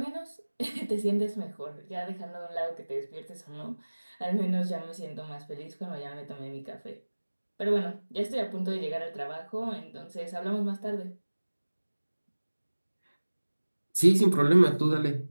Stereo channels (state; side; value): inverted; both; correlation -1.00